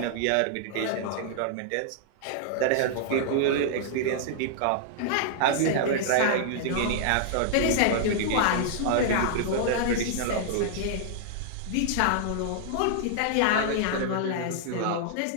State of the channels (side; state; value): both; different; correlation -0.01